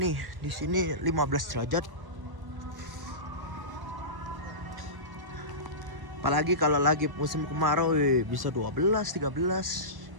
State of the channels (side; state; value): left; late; 1.1 ms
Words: Di sini 15 derajat. Apalagi kalau lagi musim kemarau bisa 12, 13.